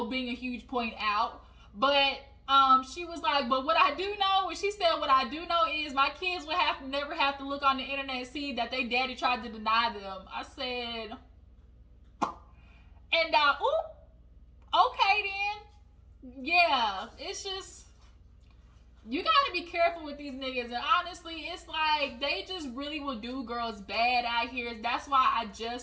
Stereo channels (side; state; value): both; identical; correlation 1.00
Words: being a huge point out. But she was like, but what I do know, when she said what I do know is my kids would never have to look on the internet and see that they daddy tried to deny them. I said, and okay then. Yeah, it's just, you gotta be careful with these niggas. And honestly, it's like, they just really will do girls bad out here. That's why I